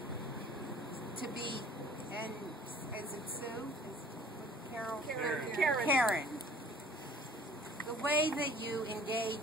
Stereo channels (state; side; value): normal; both; correlation 0.50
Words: to be, and is it Sue? Karen. The way that you